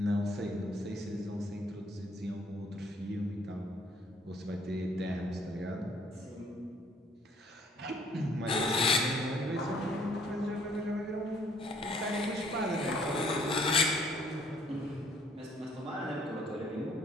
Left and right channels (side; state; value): both; normal; correlation 0.62